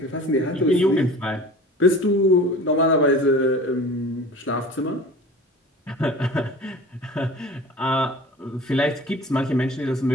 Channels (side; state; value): both; normal; correlation 0.40